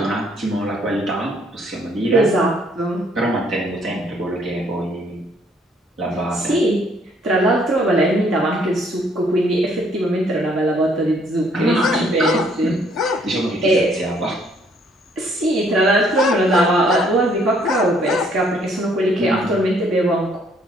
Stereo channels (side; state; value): both; normal; correlation 0.65